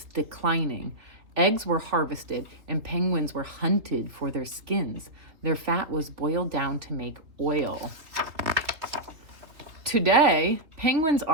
declining. Eggs were harvested and penguins were hunted for their skins. Their fat was boiled down to make oil. Today, penguins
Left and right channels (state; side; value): late; left; 3.4 ms